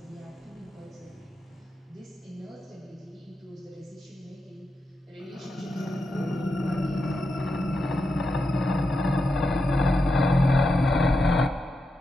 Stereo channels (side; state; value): both; normal; correlation 0.87